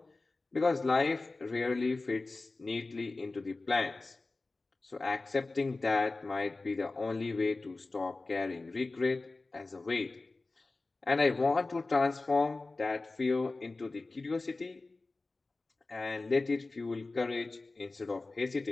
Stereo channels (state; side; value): quieter; right; 3.4 dB